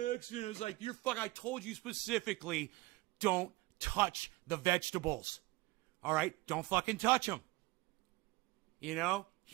accident. I was like, I told you specifically, don't touch the vegetables. All right? Don't fucking touch them. You know?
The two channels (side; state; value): left; quieter; 21.1 dB